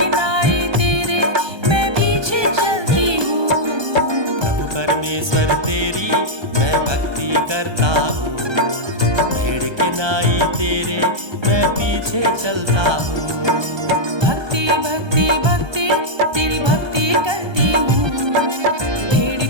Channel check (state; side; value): late; left; 1.2 ms